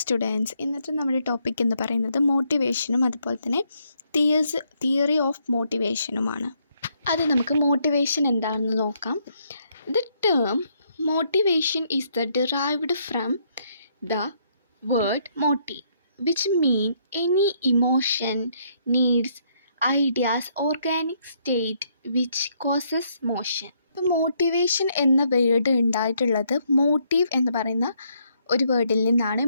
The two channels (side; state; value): both; inverted; correlation -0.72